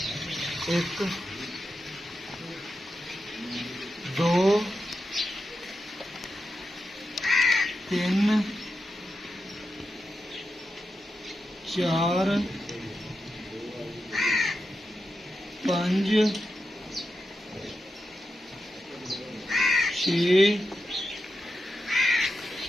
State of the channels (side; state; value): both; normal; correlation 0.88